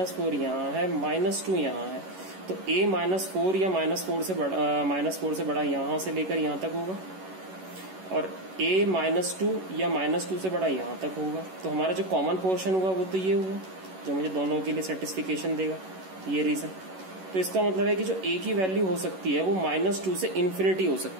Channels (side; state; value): left; late; 11 ms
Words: यहाँ है, -2 यहाँ है, तो a -4 या -4 से बड़ा यहाँ से लेकर यहाँ तक होगा और a -2 या -2 से बड़ा यहाँ तक होगा। तो हमारा जो कॉमन पोर्शन हुआ वो तो ये हुआ जो मुझे दोनों के लिए सेटिस्फिकेशन देगा, ये रीजन। तो इसका मतलब है कि जो a की वैल्यू हो सकती है वो -2 से इन्फिनिटी हो